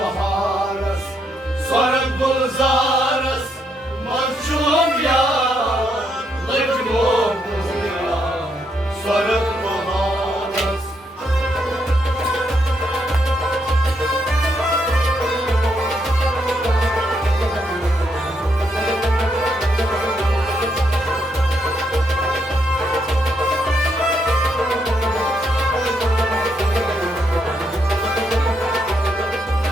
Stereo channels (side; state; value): both; normal; correlation 0.77